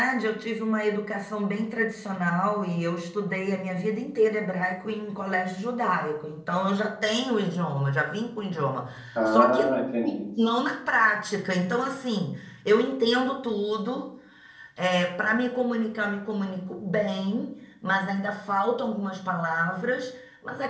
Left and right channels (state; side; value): identical; both; correlation 1.00